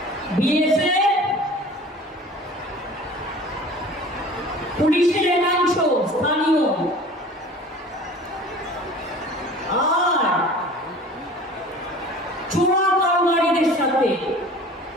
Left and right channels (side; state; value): both; normal; correlation 0.43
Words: বিএসএফ, পুলিশের একাংশ স্থানীয়, আর চোরা কারবারিদের সাথে